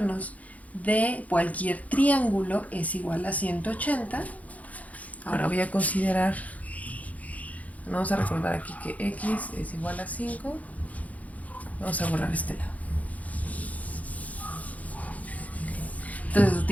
de cualquier triángulo es igual a 180, ahora voy a considerar, vamos a recordar aquí que x es igual a 5, vamos a borrar este lado. Entonces,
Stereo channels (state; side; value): late; right; 0.071 ms